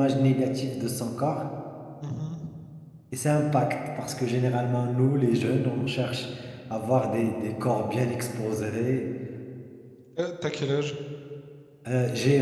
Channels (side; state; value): both; identical; correlation 1.00